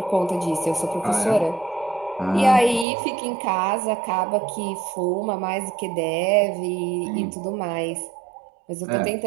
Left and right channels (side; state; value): left; drops out; at 2.9 s